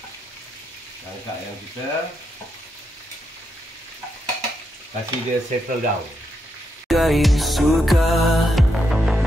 Angkat ayam kita, kasih dia settle down.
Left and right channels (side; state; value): both; normal; correlation 0.82